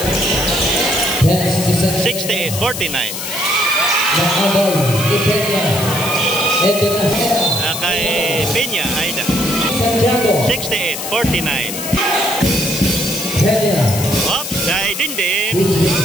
68-49. Ito na. Kay Peña, Aida. Santiago. 68-49. Kenya. Oops, kay Dindin.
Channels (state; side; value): noise; left; hiss, 6 dB below the sound